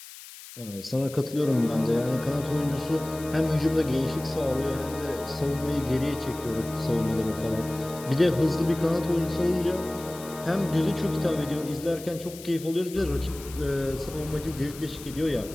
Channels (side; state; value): left; noise; hiss, 16 dB below the sound